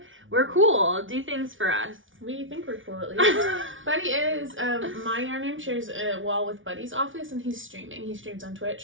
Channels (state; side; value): late; left; 0.57 ms